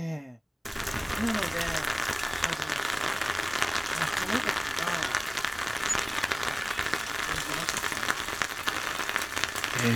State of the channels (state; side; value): identical; both; correlation 1.00